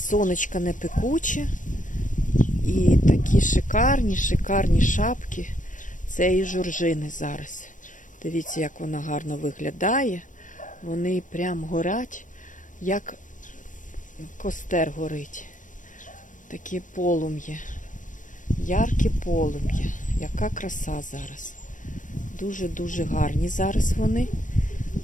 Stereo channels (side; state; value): right; late; 0.37 ms